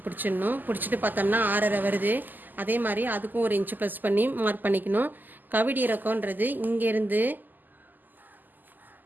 பிடிச்சிடணும். பிடிச்சிட்டு பார்த்தோம்னா 6.5 வருது. அதே மாதிரி அதுக்கும் 1 இன்ச்சு ப்ளஸ் பண்ணி மார்க் பண்ணிக்கணும். கவிடி இறக்கம்ன்றது இங்கேருந்து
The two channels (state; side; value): late; left; 0.086 ms